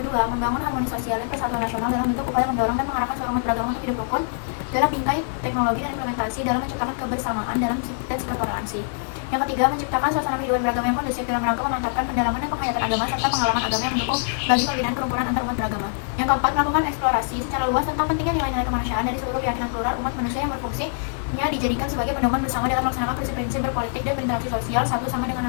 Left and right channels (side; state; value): right; silent; digital silence